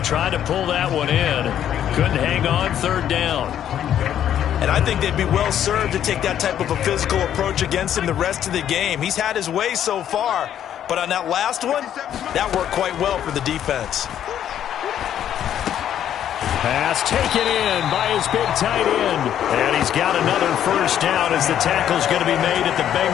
to pull that one in. Couldn't hang on. 3rd down. And I think they'd be well served to take that type of a physical approach against him the rest of the game. He's had his way so far, But on that last one, that worked quite well for the defense. Pass taken in by his big tight end. And he's got another first down as the tackle's going to be made at the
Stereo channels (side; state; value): right; quieter; 10.3 dB